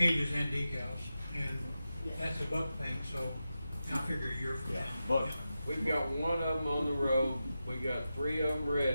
and decals, and that's a buck thing, so I figure a year from Yeah, now. but- yeah. We've got one of them on the road, we got 3 of them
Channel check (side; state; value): both; inverted; correlation -0.91